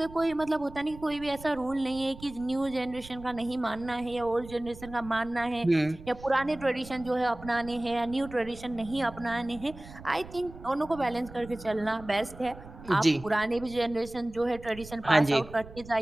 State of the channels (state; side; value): noise; right; rumble, 16 dB below the sound